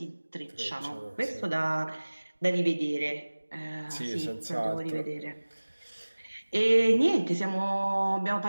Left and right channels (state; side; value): inverted; both; correlation -1.00